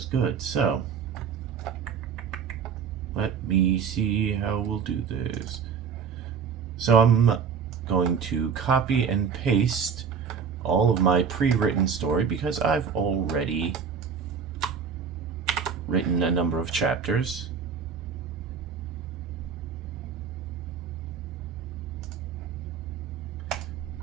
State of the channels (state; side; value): quieter; left; 6.6 dB